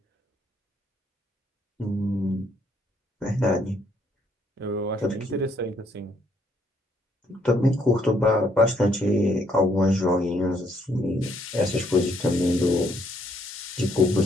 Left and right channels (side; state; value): both; normal; correlation 0.70